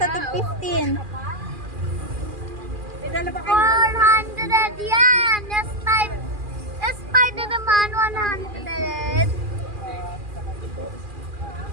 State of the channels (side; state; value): left; late; 2.4 ms